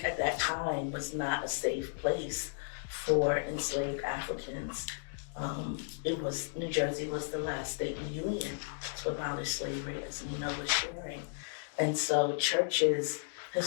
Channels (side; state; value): right; silent; digital silence